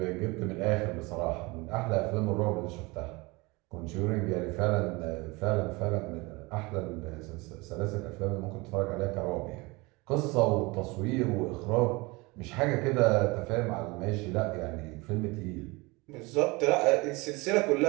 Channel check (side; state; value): left; quieter; 24.7 dB